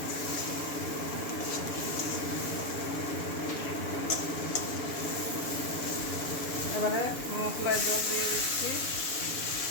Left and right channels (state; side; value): late; right; 7.1 ms